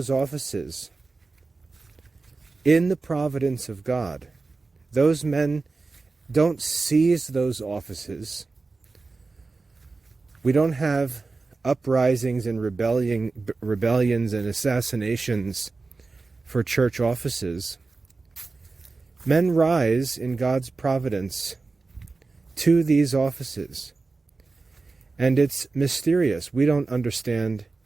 offices in the providence of God. Those men don't seize those offices. We don't have uprisings and rebellions and assassinations for church offices. Men rise in God's providence to these offices. And it's mysterious. We don't understand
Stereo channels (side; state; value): left; quieter; 3.8 dB